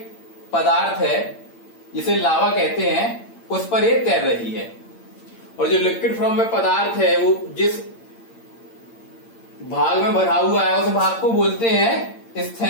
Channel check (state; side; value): late; right; 8.8 ms